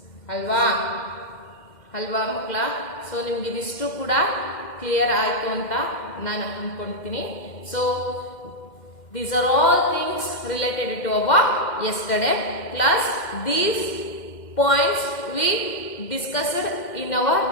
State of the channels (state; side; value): late; right; 2.1 ms